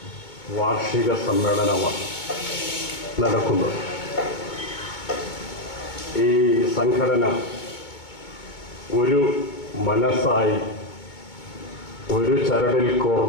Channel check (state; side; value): late; right; 2.2 ms